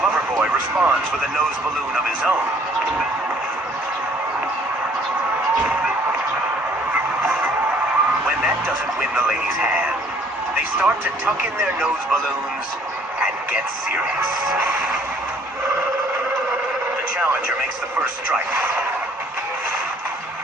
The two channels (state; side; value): normal; both; correlation 0.59